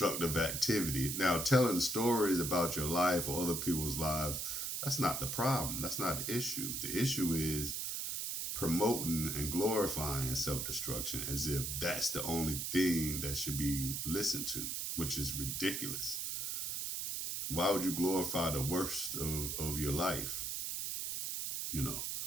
activity. Now, telling stories about your life or other people's lives, that's not the problem. That's not the issue. The issue is promoting and glorifying self-destruction as if that's the only thing that should be listened to, which is ridiculous. Why would you glorify the worst of your life? It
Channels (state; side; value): noise; right; hiss, 2 dB below the sound